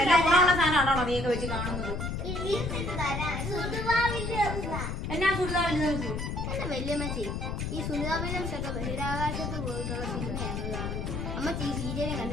എല്ലാം ഗുണമുള്ള സാധനമാണോ നീയൊക്കെ വെച്ച് കാണുന്നത്? എന്നാ സുനിതാവിന്റെ എന്റെ വല്യമ്മച്ചി, ഈ സുനിതാ വില്യംസ് ഒക്കെ ബഹിരാകാശത്ത് പോയിട്ടുള്ള സിനിമയാണ് കാണുന്നത്. അമ്മച്ചി ഈ സീരിയലും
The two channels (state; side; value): noise; left; rumble, 3 dB below the sound